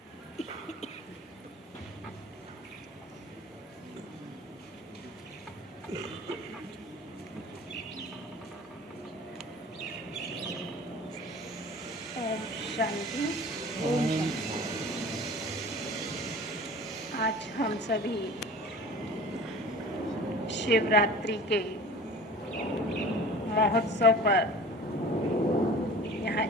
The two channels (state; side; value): normal; both; correlation 0.43